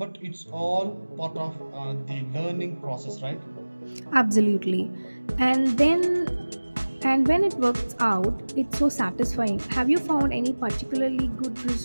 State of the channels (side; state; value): both; inverted; correlation -1.00